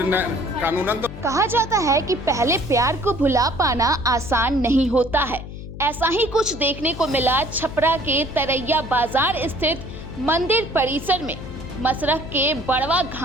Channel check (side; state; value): left; noise; hum, 12 dB below the sound